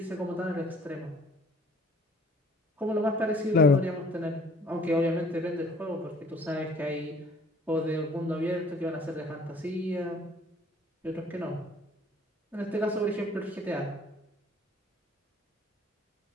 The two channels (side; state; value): both; normal; correlation 0.56